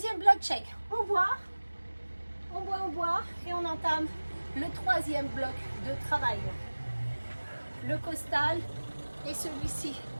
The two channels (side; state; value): both; inverted; correlation -1.00